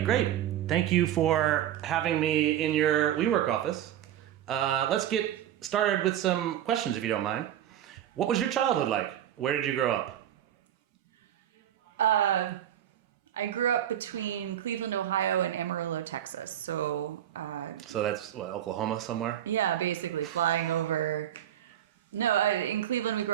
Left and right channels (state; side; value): quieter; left; 11.2 dB